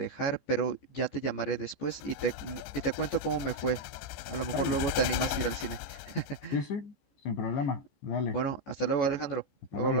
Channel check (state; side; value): late; right; 15 ms